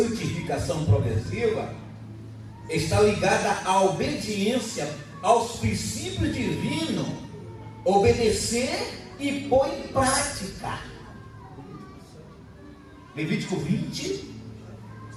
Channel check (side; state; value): both; identical; correlation 1.00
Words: progressiva está ligada à obediência aos princípios divinos, obedecer e pôr em prática. Levítico 20,